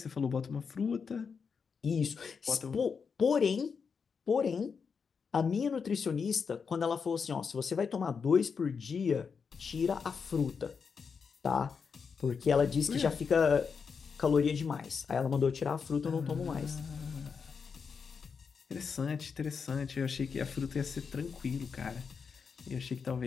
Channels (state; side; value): quieter; right; 5.8 dB